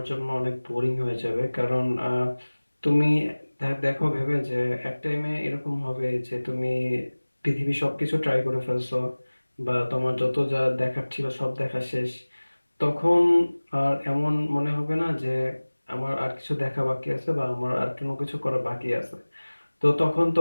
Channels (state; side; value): inverted; both; correlation -1.00